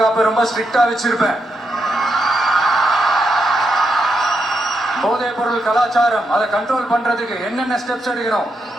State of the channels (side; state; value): both; normal; correlation 0.82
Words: ரொம்ப ஸ்ட்ரிக்டா வச்சிருப்பேன். போதைப் பொருள் கலாச்சாரம் அதை கண்ட்ரோல் பண்றதுக்கு என்னென்ன ஸ்டெப்ஸ் எடுக்கணும்,